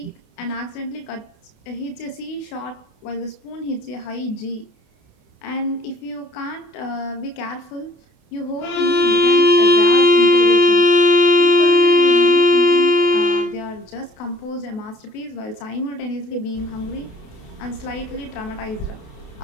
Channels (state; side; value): late; right; 28 ms